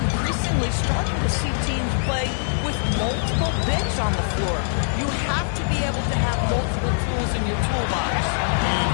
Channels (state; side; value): silent; right; 63 dB below the other